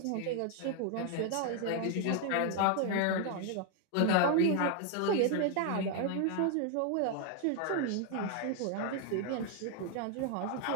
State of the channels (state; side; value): different; both; correlation 0.00